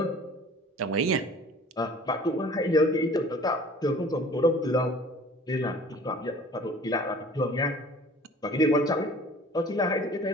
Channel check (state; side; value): normal; both; correlation 0.48